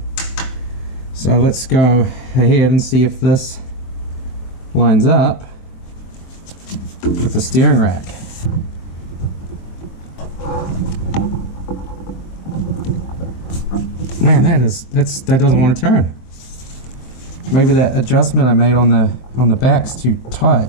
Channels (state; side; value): late; right; 23 ms